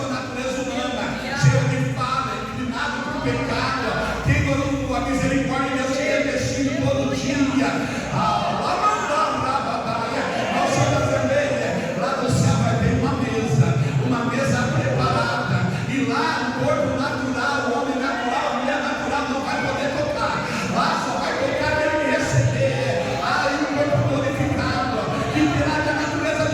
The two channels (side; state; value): both; identical; correlation 1.00